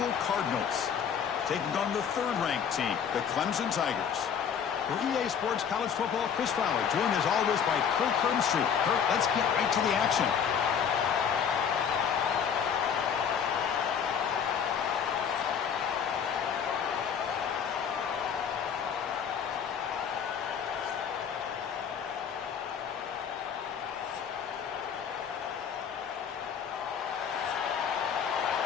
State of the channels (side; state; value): right; quieter; 7.5 dB